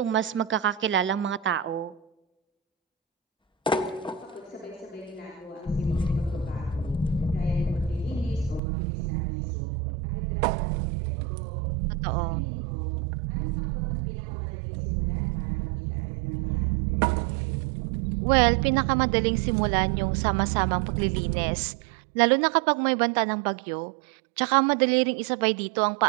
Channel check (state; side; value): drops out; left; at 8.6 s